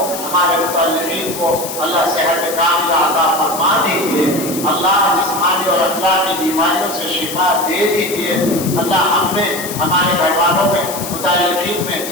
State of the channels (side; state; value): left; noise; hiss, 8 dB below the sound